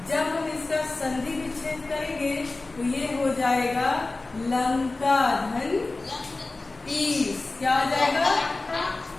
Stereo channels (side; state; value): right; quieter; 3.3 dB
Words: जब हम इसका संधि विच्छेद करेंगे तो ये हो जाएगा लंका धन ईश। क्या हो जाएगा?